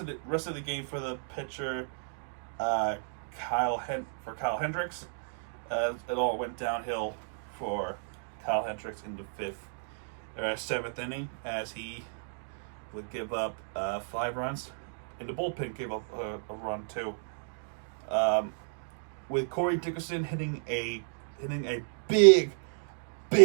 the game for the pitcher Kyle Hendricks, it all went downhill for Kyle Hendricks in the seventh inning, as he would give up 5 runs, and the bullpen gave up a run too. With Corey Dickerson hitting a big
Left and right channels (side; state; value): left; silent; digital silence